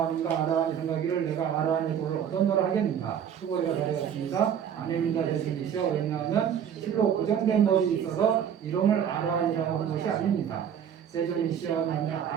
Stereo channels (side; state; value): left; quieter; 8.6 dB